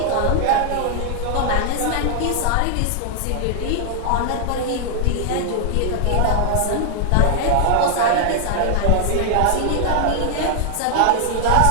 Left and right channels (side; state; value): both; different; correlation -0.01